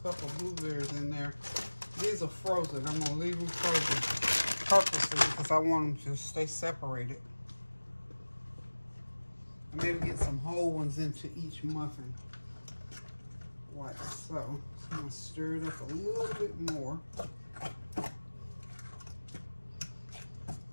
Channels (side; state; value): both; inverted; correlation -1.00